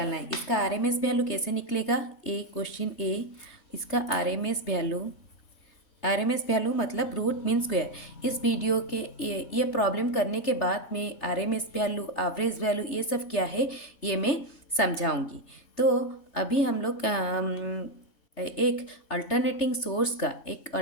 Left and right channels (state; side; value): late; right; 3.3 ms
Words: है। इसका आरएमएस वैल्यू कैसे निकलेगा? क्वेश्चन ए, इसका आरएमएस वैल्यू मतलब रूट मीन स्क्वायर। इस वीडियो के ये प्रॉब्लम करने के बाद में आरएमएस वैल्यू, एवरेज वैल्यू, ये सब क्या है ये मैं समझाऊंगी। तो अभी हम लोग एक अल्टरनेटिंग